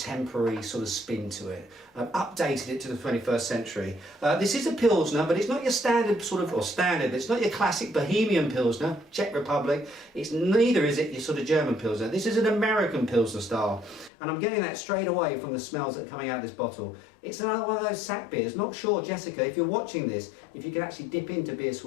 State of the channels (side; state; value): right; drops out; at 14.1 s